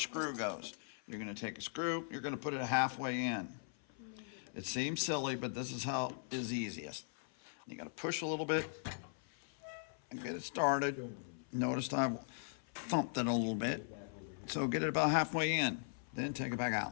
screw goes. You're going to take a screw, you're going to put it halfway in. It seems silly, but this is how is easiest. You got to push a little bit and get it started. Notice I've thumped it a little bit. So get it about halfway in, then take it back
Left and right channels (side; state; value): right; silent; 51 dB below the other